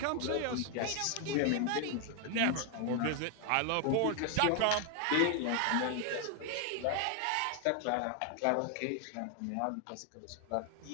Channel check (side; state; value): both; different; correlation 0.00